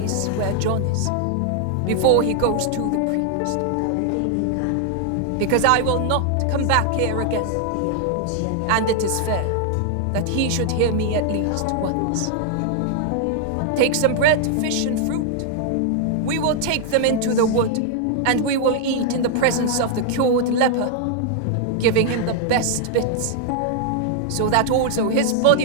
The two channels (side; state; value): both; different; correlation 0.00